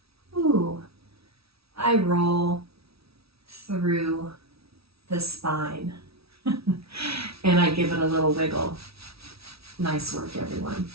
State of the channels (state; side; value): late; left; 0.76 ms